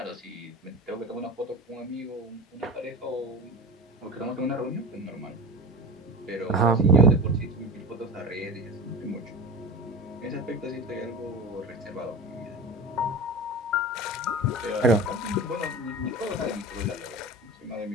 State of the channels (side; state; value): both; normal; correlation 0.31